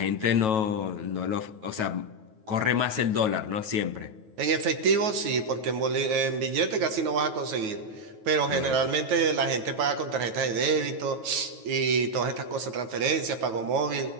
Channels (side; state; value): left; late; 9.3 ms